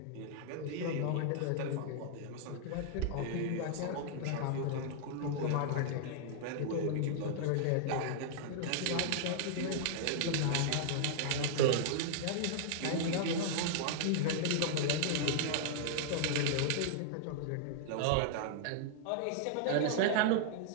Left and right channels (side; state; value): both; different; correlation -0.01